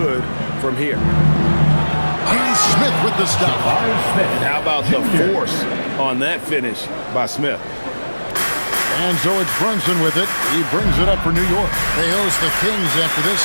from here. Here's Smith with the stop. And how about the force on that finish by Smith? And so it's Brunson with it. He brings it up for New York. They host the Kings after this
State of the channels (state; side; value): inverted; both; correlation -1.00